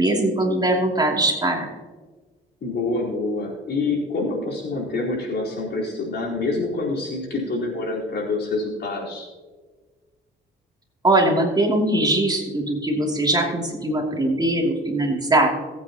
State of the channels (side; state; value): both; normal; correlation 0.37